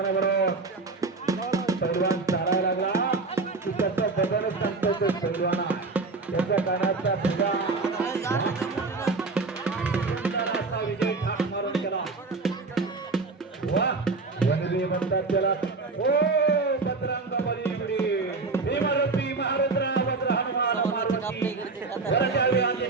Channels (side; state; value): left; quieter; 3.9 dB